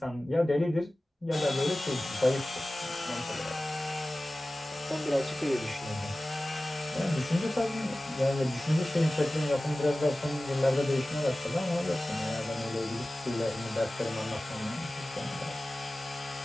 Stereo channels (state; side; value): normal; both; correlation 0.96